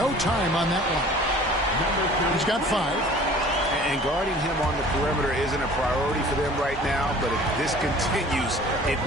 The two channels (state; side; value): normal; both; correlation 0.47